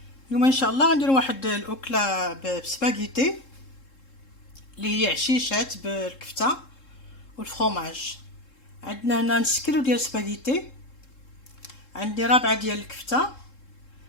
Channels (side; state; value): right; late; 3.7 ms